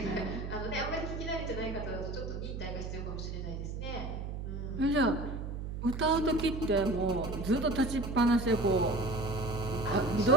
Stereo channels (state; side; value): noise; right; hum, 6 dB below the sound